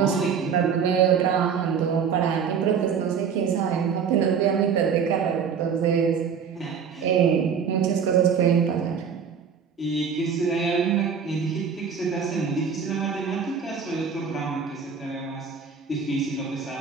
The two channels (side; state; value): left; quieter; 6.7 dB